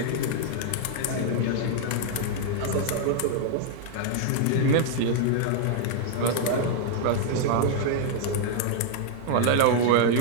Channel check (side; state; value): both; different; correlation 0.00